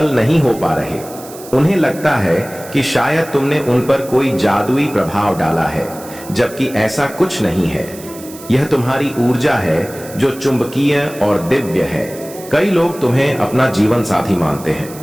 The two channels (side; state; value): right; noise; hiss, 17 dB below the sound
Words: नहीं हो पा रहे। उन्हें लगता है कि शायद तुमने उन पर कोई जादुई प्रभाव डाला है, जबकि ऐसा कुछ नहीं है। यह तुम्हारी ऊर्जा है जो चुंबकीय और दिव्य है। कई लोग तुम्हें अपना जीवन साथी मानते हैं।